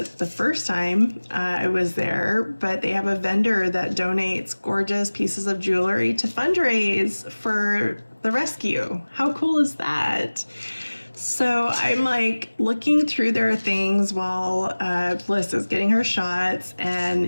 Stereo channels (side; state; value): both; inverted; correlation -1.00